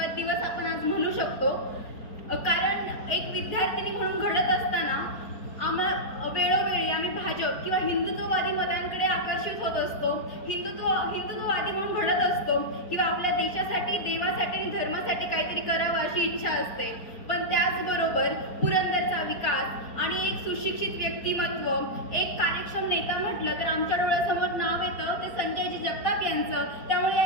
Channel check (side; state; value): right; late; 4.4 ms